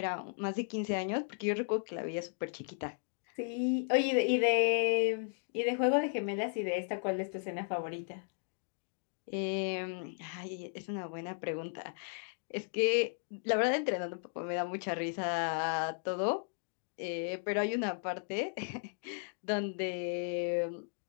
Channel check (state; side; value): silent; right; digital silence